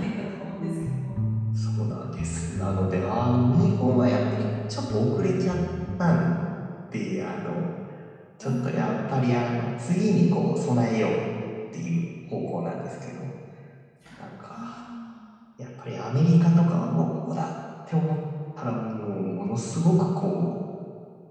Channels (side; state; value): both; identical; correlation 1.00